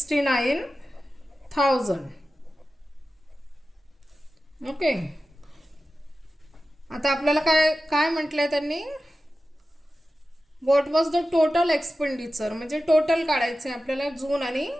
ओके. आता आपल्याला काय काय म्हटलंय त्यांनी, what was the total expenditure, म्हणजे टोटल काढायचं आहे आपल्याला जून आणि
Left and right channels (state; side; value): normal; both; correlation 0.94